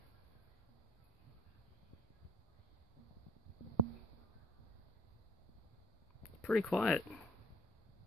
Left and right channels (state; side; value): normal; both; correlation 0.56